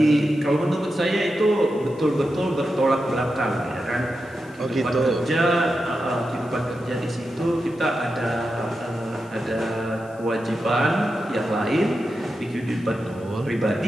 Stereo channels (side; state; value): left; noise; hiss, 28 dB below the sound